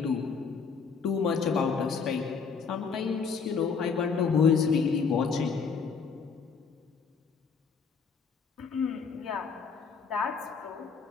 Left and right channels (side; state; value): right; quieter; 5.6 dB